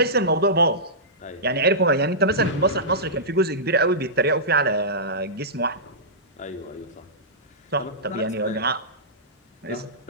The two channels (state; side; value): normal; both; correlation -0.17